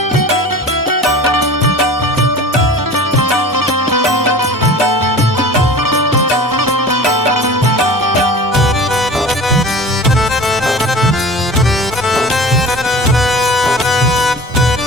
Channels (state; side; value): normal; both; correlation 0.39